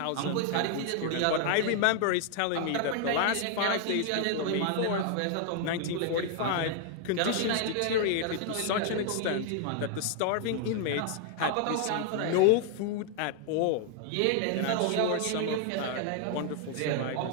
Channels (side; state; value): both; different; correlation 0.00